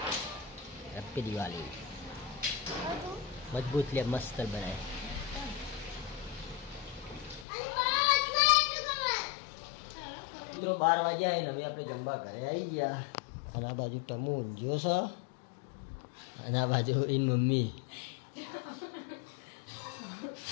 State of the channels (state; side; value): drops out; right; at 7.5 s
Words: હેપી દિવાળી। મજબૂત લે, મસ્ત બનાય। મિત્રો 12 વાગ્યા હે ને હવે આપણે જમવા ઘરે આવી ગયા। અને આ બાજુ ટમુ ઊંઘ્યો છે, અને આ બાજુ એની મમ્મી।